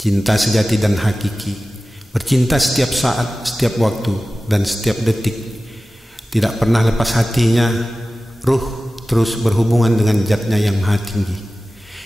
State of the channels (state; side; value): normal; both; correlation 0.96